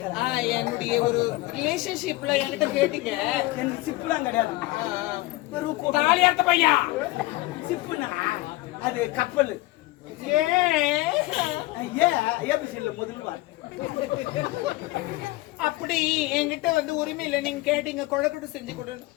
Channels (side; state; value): right; quieter; 19.4 dB